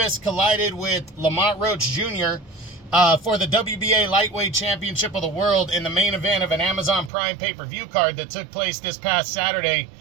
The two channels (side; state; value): left; drops out; at 7.1 s